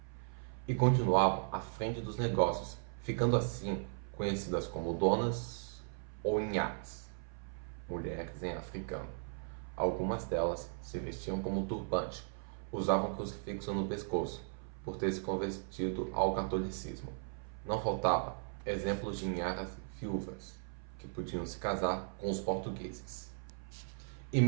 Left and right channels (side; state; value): left; silent; 53 dB below the other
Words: e continuavam à frente dos negócios, ficando assim conhecidas como donas ou inhas, mulheres em africano. Algumas delas se vestiam como turbante, usavam crucifixo no pescoço, por ter se convertido ao catolicismo. Não faltava exemplos de inharas viúvas, que podiam se casar com os portugueses. E